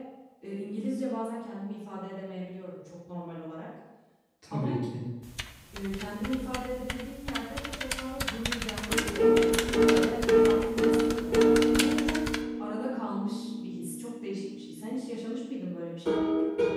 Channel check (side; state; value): both; identical; correlation 1.00